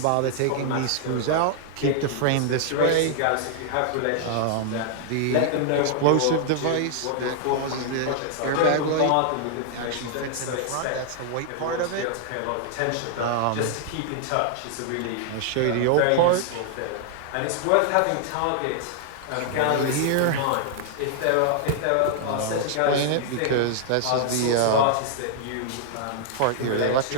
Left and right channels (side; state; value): both; different; correlation -0.01